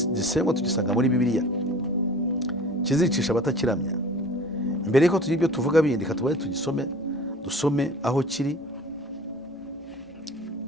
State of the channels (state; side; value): normal; both; correlation 0.43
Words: gisengwa tugisanga muri Bibiliya, kizicisha abatakiramya. Mbere yuko tugira ibyo tuvuga bindi, katubaye dusome aho kiri